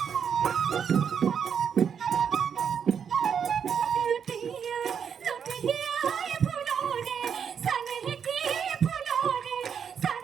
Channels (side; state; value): left; quieter; 7.4 dB